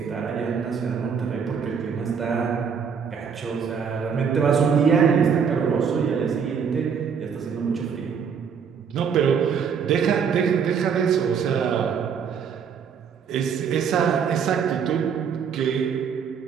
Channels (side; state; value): left; quieter; 6.8 dB